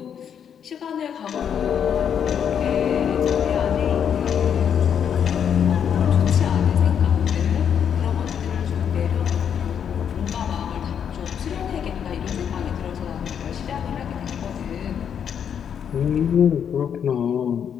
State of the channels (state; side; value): quieter; right; 8.2 dB